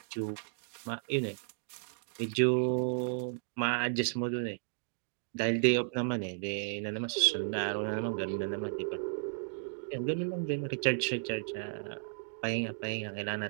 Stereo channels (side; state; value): left; silent; digital silence